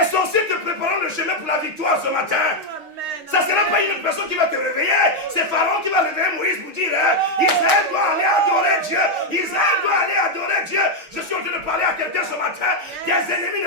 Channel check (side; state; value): left; late; 6.5 ms